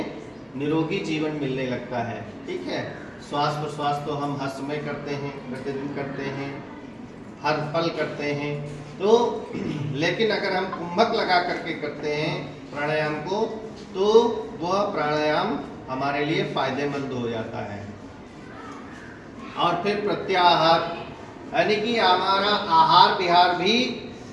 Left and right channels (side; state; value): both; identical; correlation 1.00